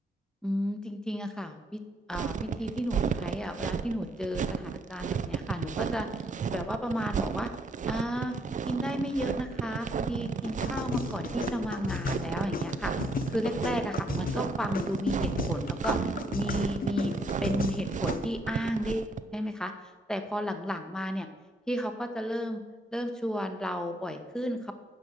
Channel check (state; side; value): normal; both; correlation 0.71